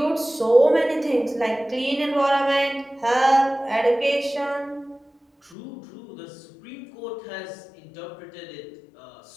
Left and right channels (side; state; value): right; drops out; at 5.6 s